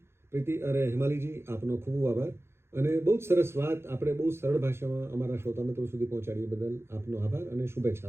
પ્રીતિ અરે હિમાલીજી, આપનો ખૂબ ખૂબ આભાર. અને બહુ જ સરસ વાત આપણે બહુ સરળ ભાષામાં અમારા શ્રોતા મિત્રો સુધી પહોંચાડીએ બદલ આપનો આભાર અને શુભેચ્છા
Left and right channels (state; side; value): late; left; 0.12 ms